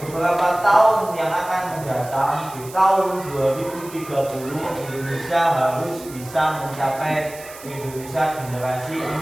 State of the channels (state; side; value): noise; right; hiss, 17 dB below the sound